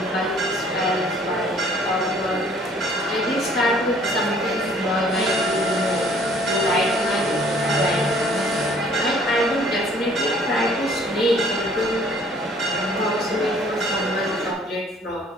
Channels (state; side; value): normal; both; correlation 0.57